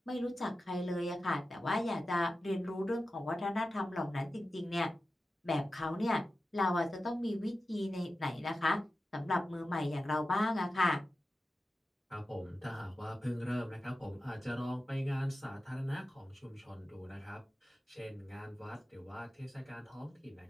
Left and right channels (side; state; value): both; normal; correlation 0.93